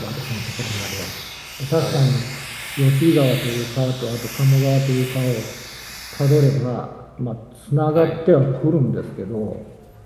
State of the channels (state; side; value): identical; both; correlation 1.00